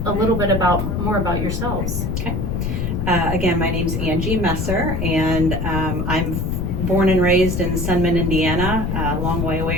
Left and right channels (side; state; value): left; noise; rumble, 1 dB below the sound